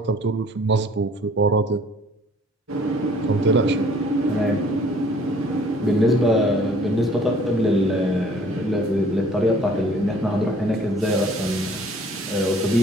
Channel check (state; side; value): normal; both; correlation 0.55